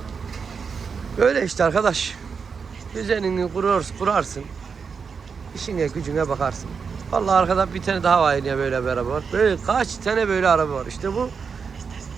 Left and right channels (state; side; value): quieter; left; 5.8 dB